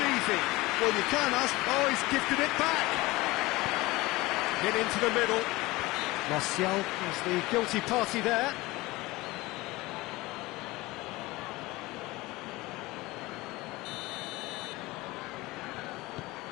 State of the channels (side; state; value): right; quieter; 20.7 dB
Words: easy. Well, you can't ask... Oh, he's gifted it back. Get into the middle. Martial is the guilty party there.